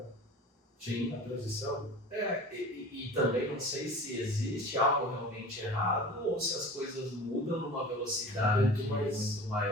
Sim. A transição. E também não sei se existe algo realmente errado ou se as coisas mudam numa velocidade muito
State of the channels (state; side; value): normal; both; correlation 0.38